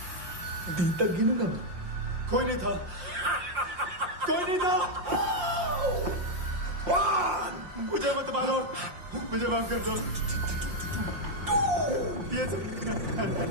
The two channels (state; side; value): late; left; 5.7 ms